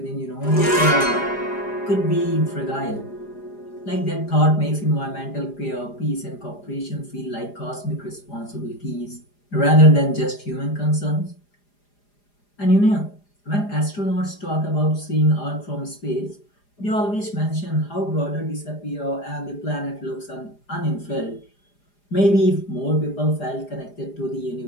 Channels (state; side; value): late; right; 4.9 ms